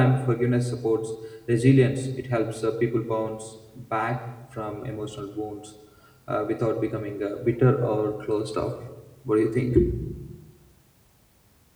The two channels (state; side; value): identical; both; correlation 1.00